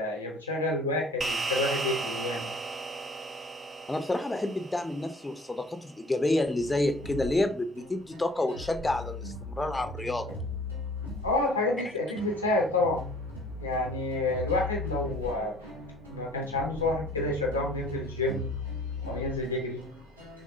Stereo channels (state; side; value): normal; both; correlation 0.51